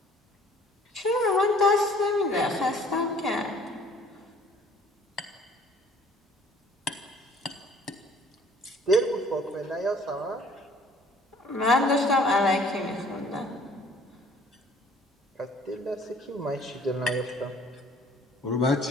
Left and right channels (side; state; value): both; normal; correlation 0.55